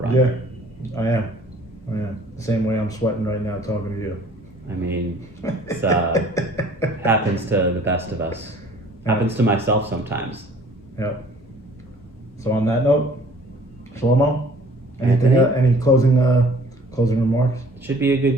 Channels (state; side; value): normal; both; correlation 0.53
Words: Yeah, I am. The same way I'm sweating right now talking to you. I mean, it's happens to the best of us. Happens to myself sometimes. Yep. So on that note, Shlomo, Anthony? Any closing remarks? Should be a good